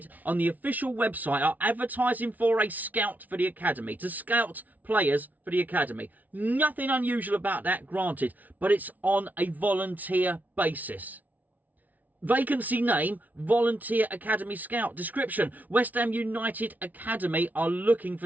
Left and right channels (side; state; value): left; late; 0.076 ms